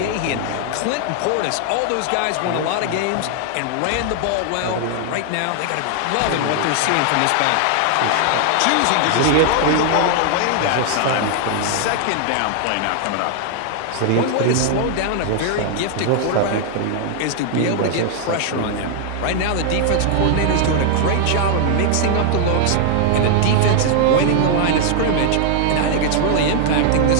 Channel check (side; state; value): both; different; correlation 0.00